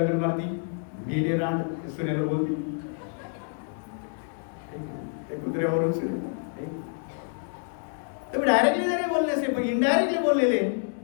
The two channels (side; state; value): right; silent; 60 dB below the other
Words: मारती, गेली रांड सुनेला बोलती, कुत्र्यावरून सुने. तुम्ही डायरेक्टली जरी बोलले नसते, पण इनडायरेक्टली बोललेले,